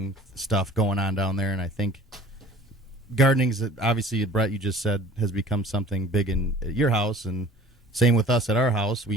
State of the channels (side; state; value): both; normal; correlation 0.48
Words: stuff going on down there, and I think gardening's obviously, Brett, you just said, has become something big in your house, and same with us at our house.